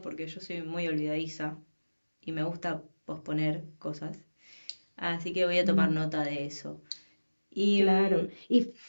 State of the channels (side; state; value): both; inverted; correlation -1.00